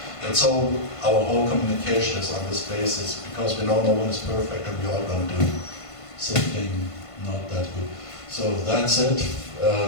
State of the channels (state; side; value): late; right; 1.5 ms